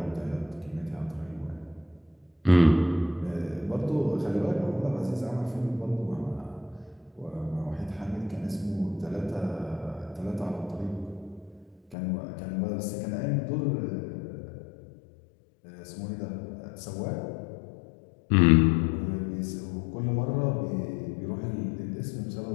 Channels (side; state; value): right; drops out; at 12.0 s